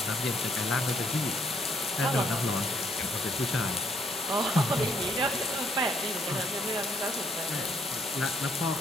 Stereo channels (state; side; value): normal; both; correlation 0.70